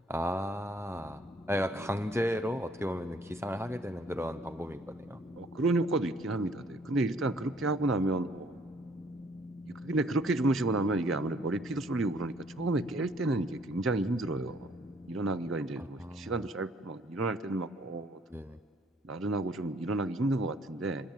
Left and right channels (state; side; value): normal; both; correlation 0.62